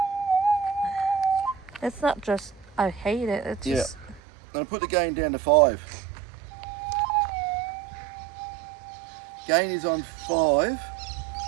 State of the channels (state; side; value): drops out; left; at 4.2 s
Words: It's not just I hate it. It's just. I'm gonna put the gain down to 5. Gain is on 5.